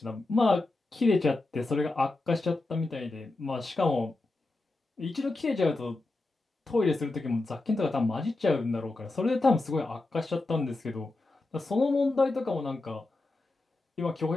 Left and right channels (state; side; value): quieter; right; 3.1 dB